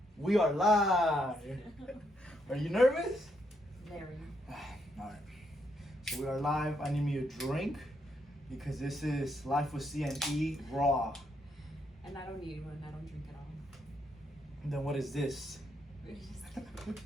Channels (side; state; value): both; normal; correlation 0.77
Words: We are live. Are you nervous? Very. Alright. So we are live. I need me a drink because this is Life with C&E Raw. And I don't need one. I don't drink at all. Then what is this?